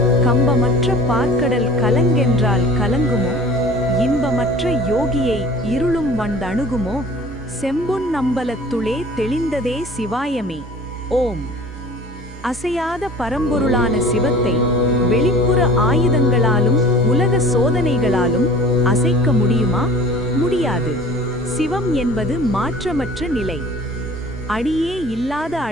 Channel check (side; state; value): both; normal; correlation 0.45